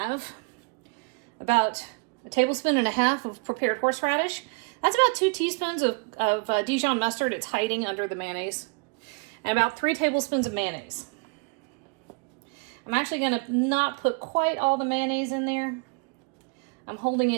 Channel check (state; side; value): quieter; left; 30.4 dB